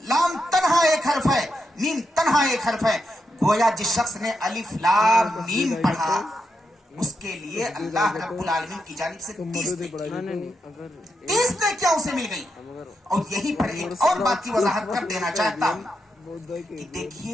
لام تنہا ایک حرف ہے، میم تنہا ایک حرف ہے۔ گویا جس شخص نے الف لام میم پڑھا اس کے لیے اللہ رب العالمین کی جانب سے 30 نیکیاں اسے مل گئی۔ اور یہی پر ایک اور بات کی وضاحت کر دینا چاہتا ہوں کہ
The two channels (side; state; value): both; normal; correlation 0.84